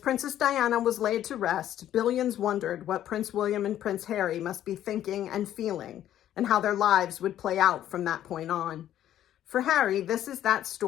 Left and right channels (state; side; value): quieter; right; 11.7 dB